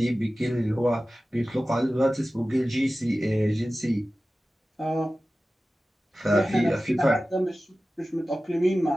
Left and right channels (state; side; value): normal; both; correlation 0.96